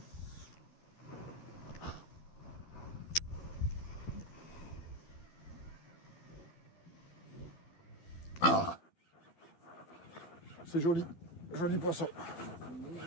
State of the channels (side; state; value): right; late; 12 ms